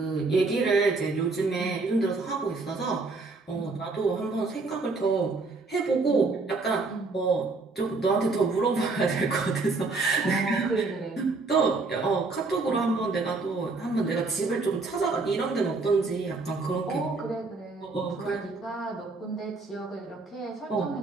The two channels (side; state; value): left; quieter; 3.8 dB